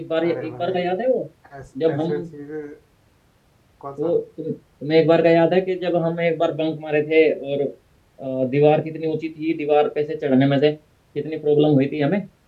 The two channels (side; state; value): both; identical; correlation 1.00